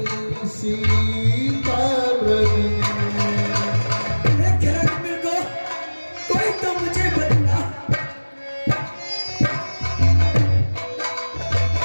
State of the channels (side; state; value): both; inverted; correlation -1.00